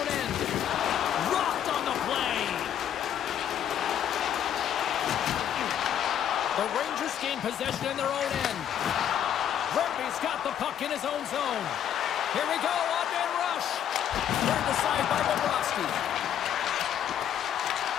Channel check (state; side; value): quieter; right; 9.8 dB